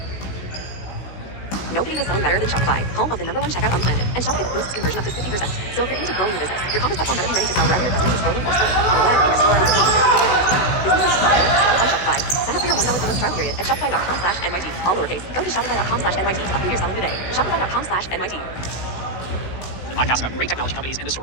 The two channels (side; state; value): right; late; 16 ms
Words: Nobody is selling better than Shopify, home of the #1 checkout on the planet. And Shopify boosts conversion up to 50%. So if you're into growing your business, your commerce platform better be ready to sell wherever your customers are scrolling or scrolling. On the web, in your store, on the businesses sell on Shopify. Sign up for your $1 per month trial period at shopify.com/NYT. All lowercase. Go to shopify.com/NYT to upgrade your selling today. Shopify.com/NYT. The podcast about great technology companies and the